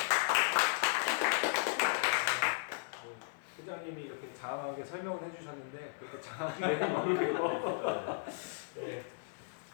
부장님이 이렇게 장황하게 설명을 해주셨는데 그렇게 장황하게 모르겠고 네.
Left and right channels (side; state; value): right; silent; digital silence